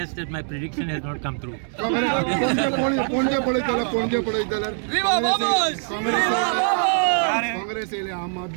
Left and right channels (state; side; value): silent; left; 59 dB below the other